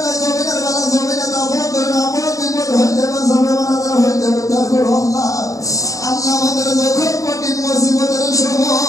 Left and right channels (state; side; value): late; right; 0.16 ms